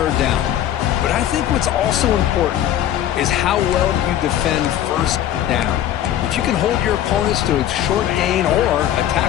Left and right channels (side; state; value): right; quieter; 11.5 dB